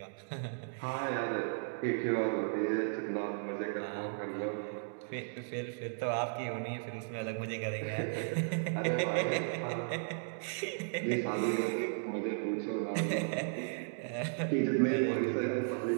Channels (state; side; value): silent; left; digital silence